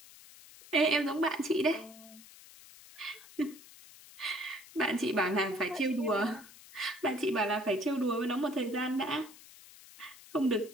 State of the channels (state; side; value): noise; left; hiss, 20 dB below the sound